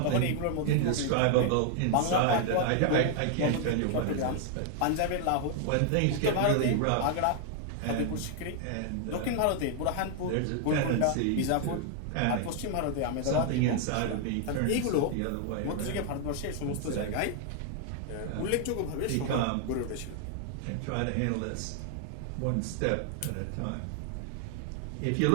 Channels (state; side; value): different; both; correlation 0.00